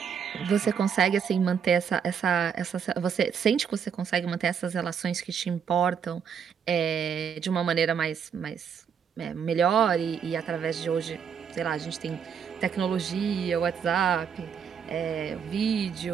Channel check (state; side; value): quieter; left; 7.3 dB